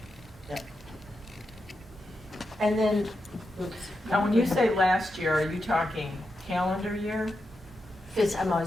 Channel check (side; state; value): both; normal; correlation 0.87